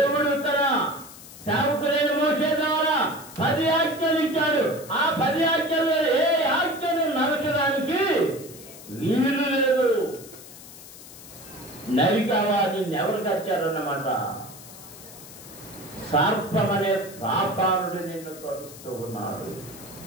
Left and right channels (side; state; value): left; noise; hiss, 17 dB below the sound